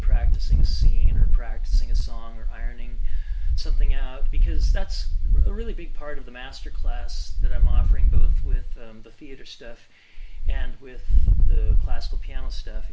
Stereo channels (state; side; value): identical; both; correlation 1.00